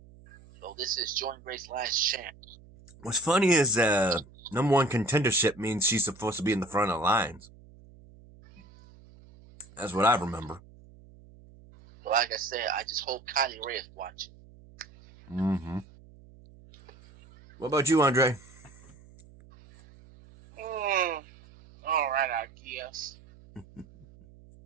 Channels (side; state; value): right; noise; hum, 23 dB below the sound